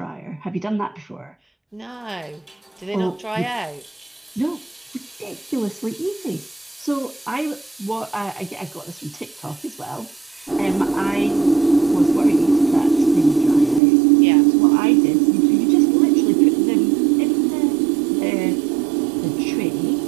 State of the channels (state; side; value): drops out; left; at 13.8 s